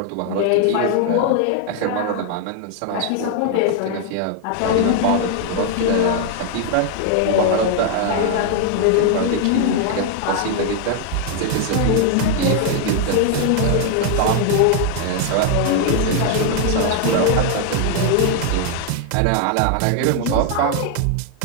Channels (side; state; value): both; different; correlation 0.00